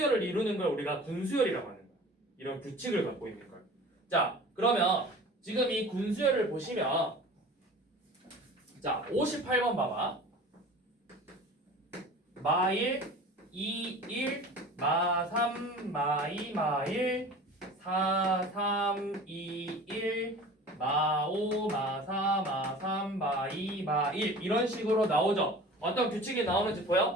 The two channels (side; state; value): both; normal; correlation 0.41